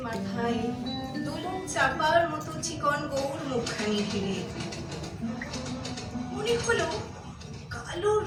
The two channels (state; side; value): identical; both; correlation 1.00